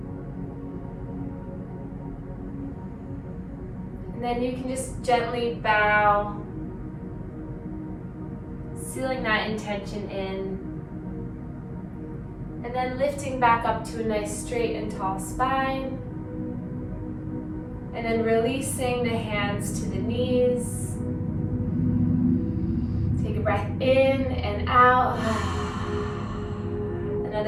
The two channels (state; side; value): identical; both; correlation 1.00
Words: And then you can just gently bow, sealing that intention in, and then lifting back up to a nice straight and tall spine, and then releasing the hands to the knees. Take a breath in and out.